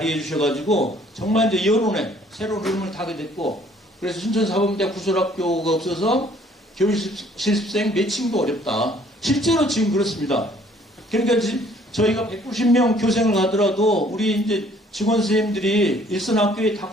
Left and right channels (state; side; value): normal; both; correlation 0.59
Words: 주셔가지고 정말 이제 여론에 새로운 흐름을 타게 됐고 그래서 순천 사범대학 부설학교가 없어서 교육 실습생 매칭도 어렵다. 실제로 지금 그렇습니다. 그러니까 저희가 190명 교생을 가더라도 우리 이제 직원 선생님들이 일선 학교에 다